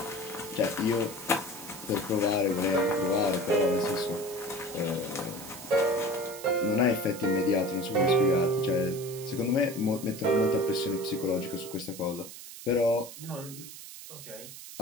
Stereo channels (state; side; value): noise; right; hiss, 13 dB below the sound